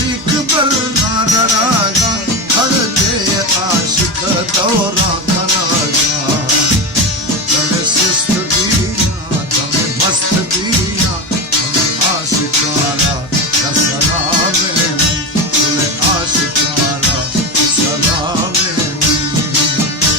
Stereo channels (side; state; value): both; normal; correlation 0.19